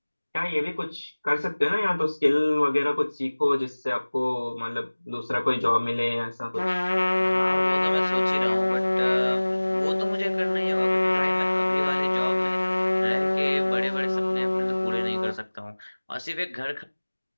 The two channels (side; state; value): both; inverted; correlation -1.00